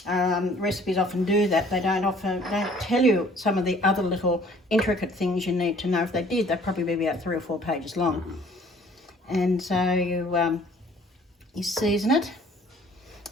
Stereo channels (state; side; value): normal; both; correlation 0.55